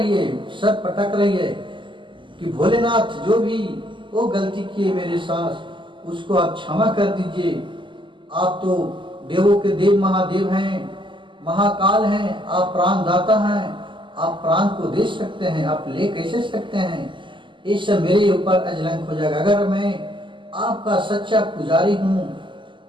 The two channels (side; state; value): left; late; 0.24 ms